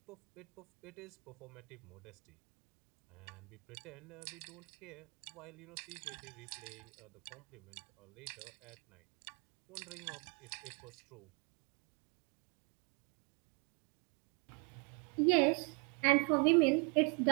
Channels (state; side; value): quieter; left; 35.5 dB